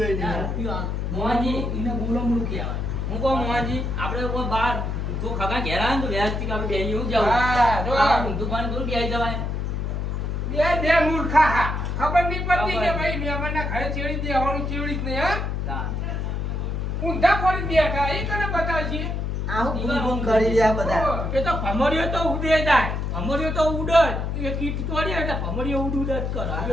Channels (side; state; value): left; noise; hum, 2 dB below the sound